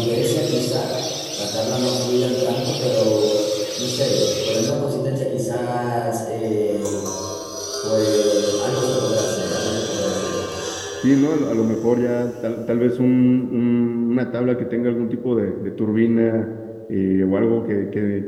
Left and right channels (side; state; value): both; identical; correlation 1.00